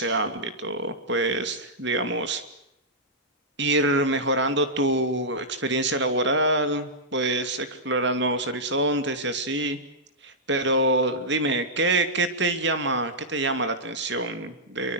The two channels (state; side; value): normal; both; correlation -0.11